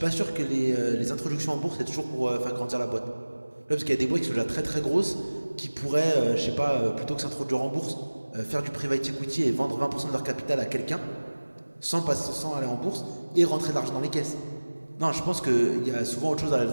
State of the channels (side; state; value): both; inverted; correlation -1.00